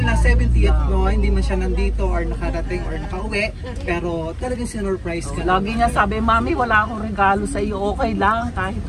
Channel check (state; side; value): identical; both; correlation 1.00